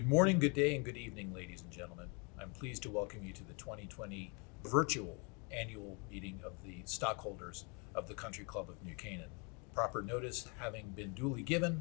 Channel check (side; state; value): right; quieter; 33.4 dB